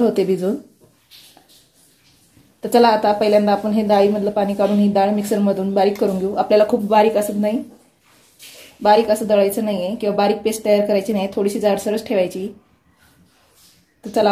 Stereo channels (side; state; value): both; identical; correlation 1.00